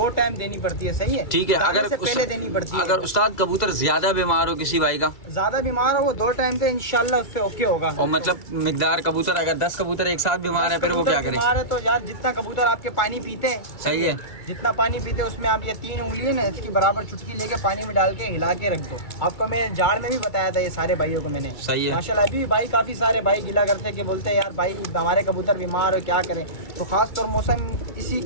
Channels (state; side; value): late; right; 2.3 ms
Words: टाइम देनी पड़ती है, सही है। ठीक है। दाने अगर से पहले देनी पड़ती है। अगर उस्ताद कबूतर ज्यादा बीमार हो किसी भाई का, ज्यादा बीमार हो वो 2 टाइम तो इंशाल्लाह उससे ओके होगा। और मतलब मिकदार कबूतर अगर 10 कबूतर एक साथ बीमार है, फिर वो क्या करे? बीमार है तो यार जितना कबूतर आपके पानी पीते हैं, सही है, जितना पानी पीते हैं उसमें आप ये 3 उंगली है ना, इसकी बराबर चुटकी लेके पानी में डाल के हिला के रख दो। आपको मैं जाड़ में भी बताया था ये सारे भाइयों को मैंने। सही है। माशाल्लाह अभी भी भाई काफी सारे भाई गिला करते हैं कि बोलते हैं यार भाई हमारे कबूतर बीमार हो, क्या करें। तो खास तौर मौसम इसी